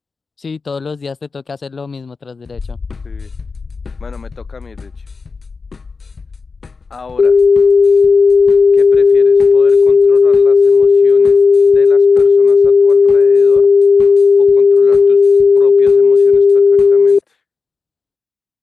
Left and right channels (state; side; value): quieter; right; 4.5 dB